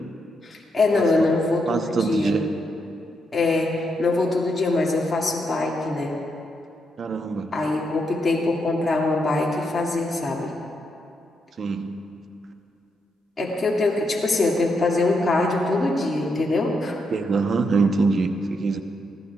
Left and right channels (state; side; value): normal; both; correlation 0.80